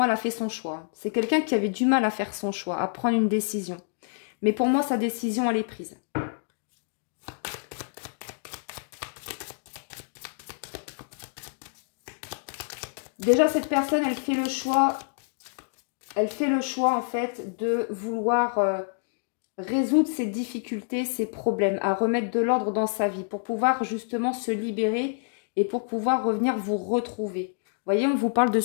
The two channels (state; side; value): silent; right; digital silence